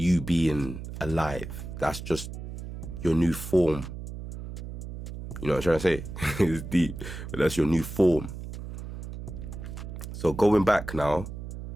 being alive. That's just your new form. You know what I'm trying to say? It's deep, but that's your new form. So going back now,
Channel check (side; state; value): right; noise; hum, 9 dB below the sound